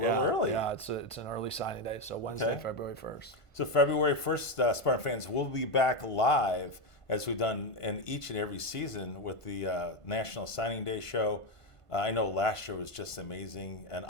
Yeah, early. Yeah, it's an early signing day, so Wednesday, Okay. February 1st. So February 1st, Spartan fans, will be back live as we've done in each and every season with the National Signing Day show. I know last year was just amazing, and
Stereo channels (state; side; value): late; right; 1.5 ms